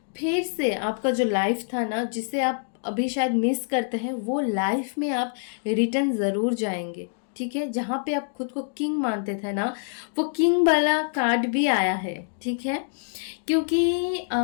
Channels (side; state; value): right; silent; digital silence